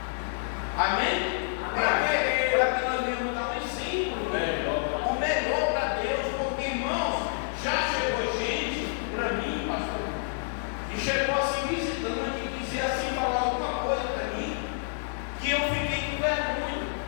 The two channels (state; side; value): silent; right; digital silence